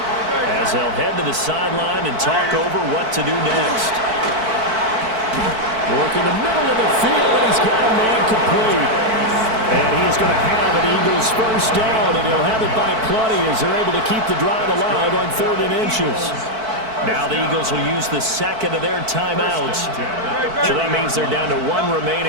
as they'll head to the sideline and talk over what to do next. Work in the middle of the field, and he's got a man complete. And he's going to have an Eagles first down, and he'll have it by plenty as they're able to keep the drive alive on 3rd and inches. Now the Eagles will use the second of their timeouts. So that means they're down to 1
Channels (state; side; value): late; left; 4.5 ms